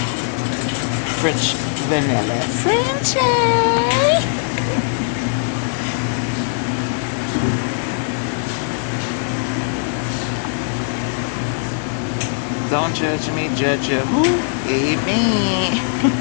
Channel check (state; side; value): silent; right; digital silence